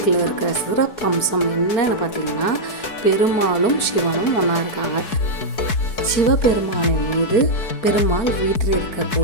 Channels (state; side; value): late; right; 4.6 ms